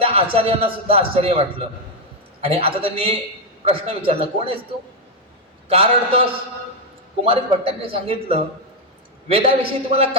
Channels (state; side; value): normal; both; correlation 0.02